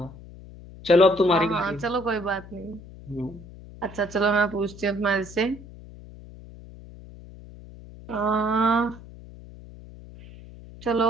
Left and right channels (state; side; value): noise; left; hum, 17 dB below the sound